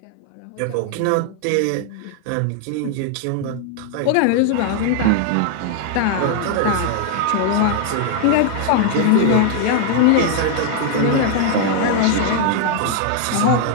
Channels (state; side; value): different; both; correlation 0.00